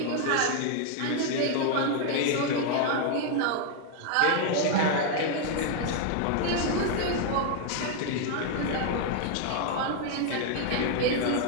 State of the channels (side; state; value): both; different; correlation 0.00